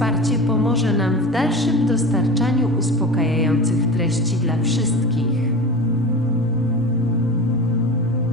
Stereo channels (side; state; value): both; normal; correlation 0.31